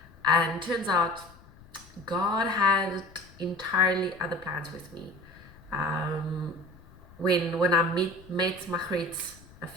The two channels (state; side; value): noise; left; rumble, 23 dB below the sound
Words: And turns out God had entirely other plans with me. When I met Margriet a